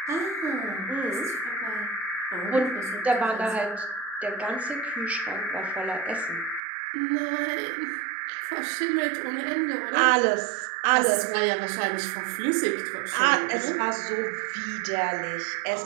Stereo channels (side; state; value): left; drops out; at 6.6 s